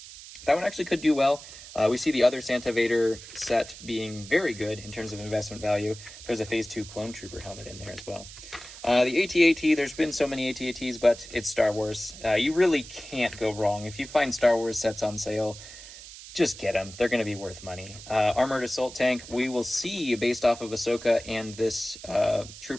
that one actually could do well. We see the other Santa Vader set being very good in terms of investment value. There's a Phase 2 Clone Trooper helmet in there as well. The AT-AT, there's been so many AT-ATs, but it's Star Wars. You really can't go wrong. If you find Star Wars sets on sale, just get them. They're going to be worth money. Armored Assault Tank, we will see based off of Ahsoka and this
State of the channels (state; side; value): noise; right; hiss, 15 dB below the sound